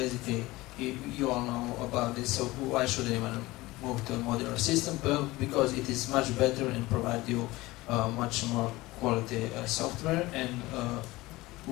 you all know about this, so why should anyone move to a modular system? Well, because it is much better and provide you much more quality software and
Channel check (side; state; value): right; quieter; 19.8 dB